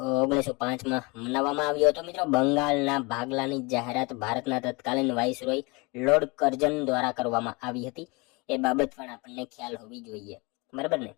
1905 મનાવવામાં આવ્યો હતો. મિત્રો બંગાળના ભાગલાની જાહેરાત ભારતના તત્કાલીન વાઇસરોય લોર્ડ કર્જન દ્વારા કરવામાં આવી હતી. એ બાબત પણ આપણને ખ્યાલ હોવી જોઈએ, બરાબર ને.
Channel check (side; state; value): right; quieter; 27.3 dB